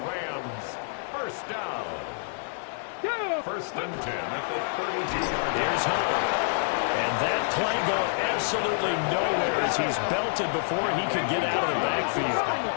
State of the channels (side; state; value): right; silent; 60 dB below the other